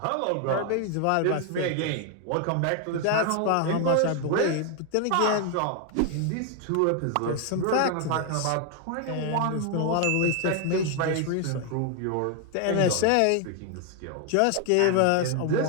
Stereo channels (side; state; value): both; different; correlation 0.00